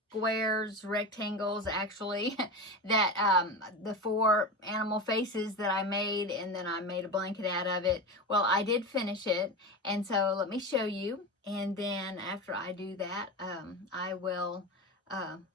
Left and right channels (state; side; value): normal; both; correlation 0.24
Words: Squares, rectangles actually, that the 4 animal faces that I made, and then I made a blanket out of it. Well, I did finish it, and so let me show you, and then after I do that, I will